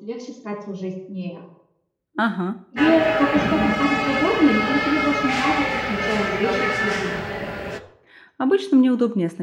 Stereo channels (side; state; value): both; identical; correlation 1.00